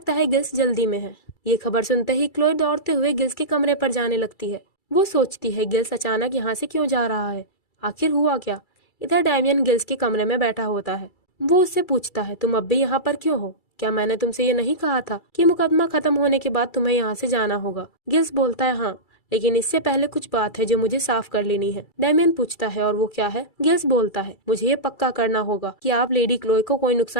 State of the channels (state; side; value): late; right; 2.3 ms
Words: है गिल्स जल्दी में है। ये खबर सुनते ही क्लोए दौड़ते हुए गिल्स के कमरे पर जाने लगती है। वो सोचती है गिल्स अचानक यहाँ से क्यों जा रहा है, आखिर हुआ क्या? इधर डैमियन गिल्स के कमरे में बैठा होता है। वो उससे पूछता है तुम अब भी यहाँ पर क्यों हो? क्या मैंने तुमसे ये नहीं कहा था कि मुकदमा खत्म होने के बाद तुम्हें यहाँ से जाना होगा? गिल्स बोलता है हाँ, लेकिन इससे पहले कुछ बात है जो मुझे साफ कर लेनी है। डैमियन पूछता है और वो क्या है? गिल्स बोलता है मुझे ये पक्का करना होगा कि आप लेडी क्लोए को कोई